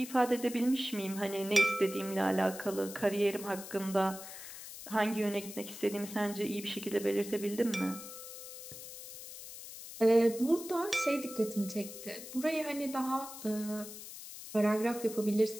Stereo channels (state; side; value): noise; left; hiss, 12 dB below the sound